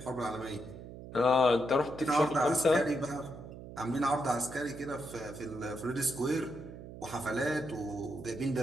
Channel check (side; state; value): right; noise; hum, 13 dB below the sound